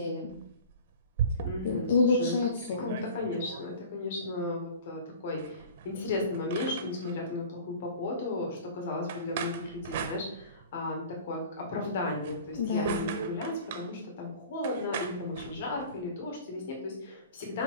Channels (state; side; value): inverted; both; correlation -0.41